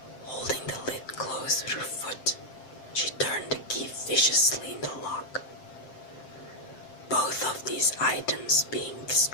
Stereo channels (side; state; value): right; late; 7.6 ms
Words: Holding the lid closed with her foot, she turned the key viciously in the lock. Both of these items being